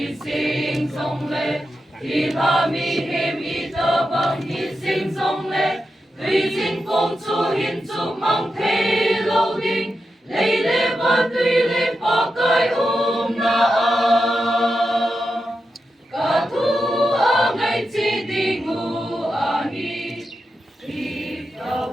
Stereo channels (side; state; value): both; normal; correlation 0.89